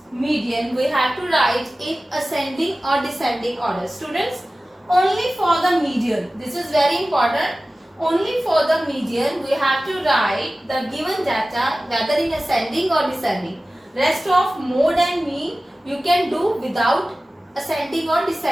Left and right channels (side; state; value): both; normal; correlation 0.96